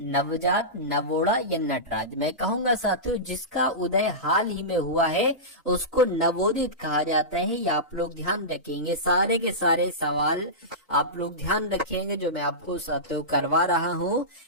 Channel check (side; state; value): both; normal; correlation -0.17